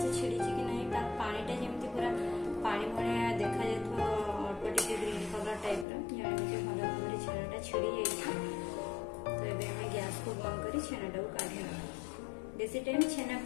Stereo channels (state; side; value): drops out; right; at 5.9 s